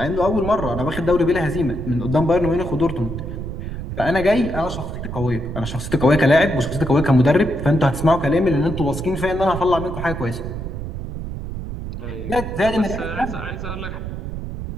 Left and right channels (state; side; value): noise; right; rumble, 7 dB below the sound